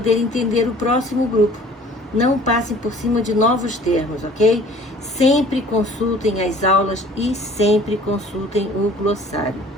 entender o próximo grupo. Não passem por cima de novos termos, ok? Sempre consultem as aulas e sempre consultem o glossário.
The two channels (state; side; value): normal; both; correlation 0.51